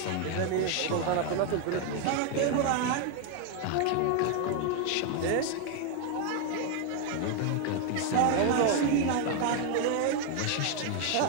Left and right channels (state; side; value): different; both; correlation 0.01